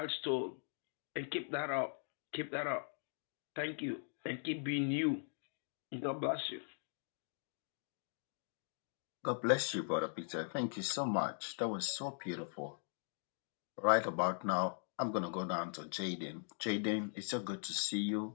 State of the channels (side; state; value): right; silent; digital silence